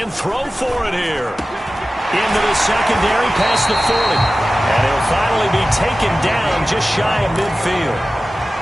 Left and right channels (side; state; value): both; normal; correlation 0.95